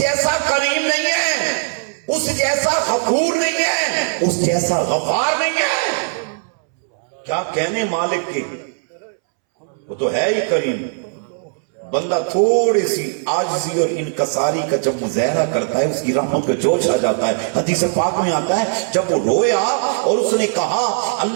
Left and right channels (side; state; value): left; silent; 67 dB below the other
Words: کریم نہیں ہے، اس جیسا غفور نہیں ہے، اس جیسا غفار نہیں ہے. کیا کہنے مالک کے، وہ تو ہے ہی کریم. بندہ تھوڑی سی عاجزی اور انکساری کا جب مظاہرہ کرتا ہے اس کی رحمت کا جوش آ جاتا ہے. حدیث پاک میں آتا ہے جب وہ رویا اور اس نے کہا